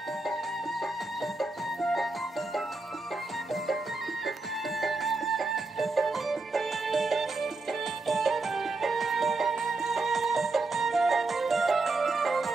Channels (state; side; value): quieter; left; 3.4 dB